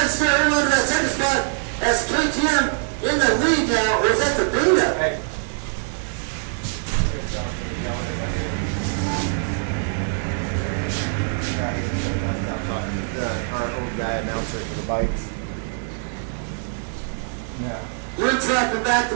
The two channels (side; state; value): left; silent; 63 dB below the other